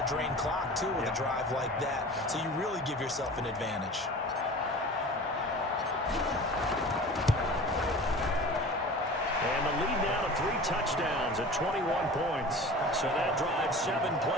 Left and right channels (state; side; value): normal; both; correlation 0.38